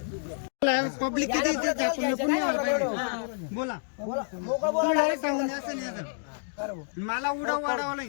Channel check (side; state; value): right; silent; digital silence